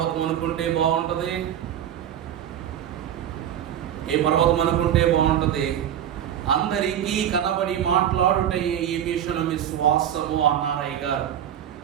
అనుకుంటే బాగుంటది? ఏ పర్వతం అనుకుంటే బాగుంటది? అందరికీ కనబడి మాట్లాడుటే ఈ మిషన్ విశ్వాసము అన్నారు అయ్యగారు.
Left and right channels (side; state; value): left; quieter; 10.3 dB